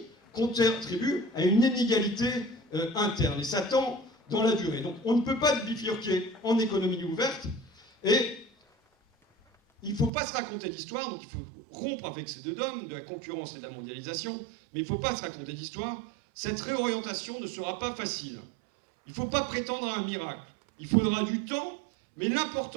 contribue à une inégalité interne, et ça tend dans la durée. Donc on ne peut pas bifurquer en économie ouverte, et il ne faut pas se raconter d'histoire, donc il faut rompre avec ces deux dogmes, de la concurrence et de la mondialisation, mais il ne faut pas se raconter d'histoire. Cette réorientation ne sera pas facile. Il ne faut pas prétendre à un miracle. Il faudra du temps, mais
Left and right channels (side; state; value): left; drops out; at 10.1 s